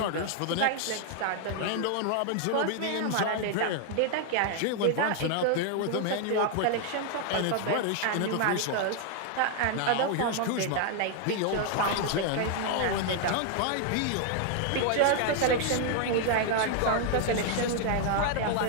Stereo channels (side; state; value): both; different; correlation 0.00